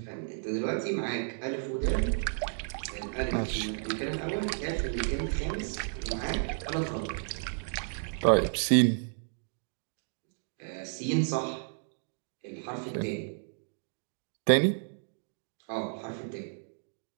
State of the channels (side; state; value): left; silent; digital silence